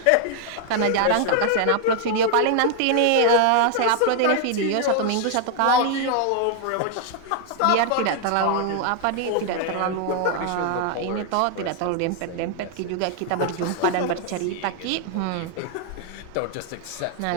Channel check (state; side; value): different; both; correlation 0.00